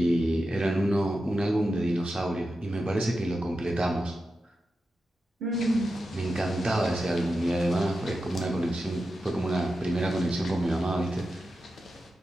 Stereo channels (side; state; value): both; normal; correlation 0.90